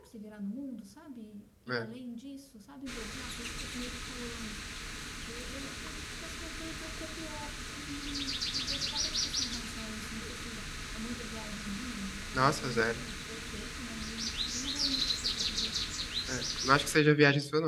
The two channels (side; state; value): both; identical; correlation 1.00